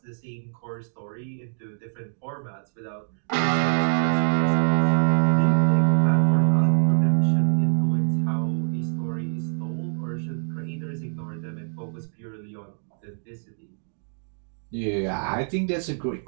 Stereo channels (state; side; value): silent; left; digital silence